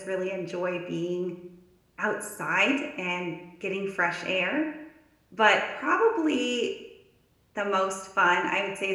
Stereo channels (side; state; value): both; identical; correlation 1.00